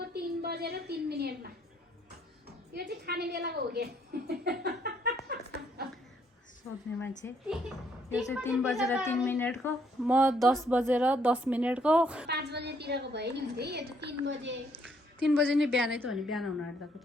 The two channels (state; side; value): normal; both; correlation 0.69